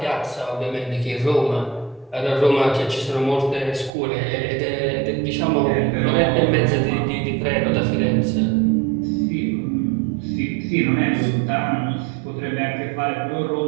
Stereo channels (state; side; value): drops out; left; at 3.9 s